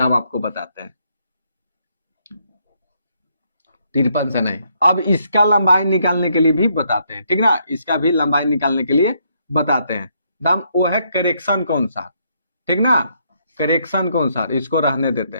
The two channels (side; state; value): both; inverted; correlation -0.73